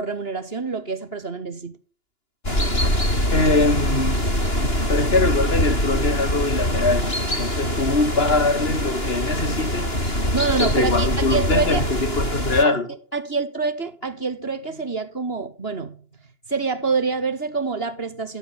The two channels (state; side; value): late; right; 2.9 ms